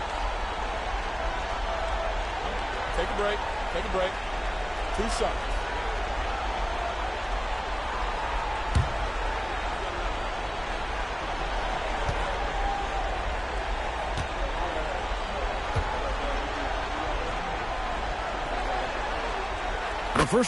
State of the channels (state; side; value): identical; both; correlation 1.00